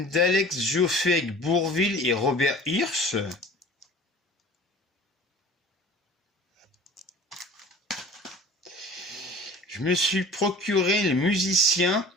d'Alex Joffé avec Bourvil et Robert Hirsch. Je me suis procuré Le musicien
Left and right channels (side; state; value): both; normal; correlation 0.44